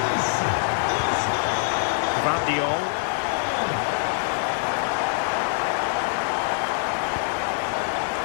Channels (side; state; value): right; silent; 59 dB below the other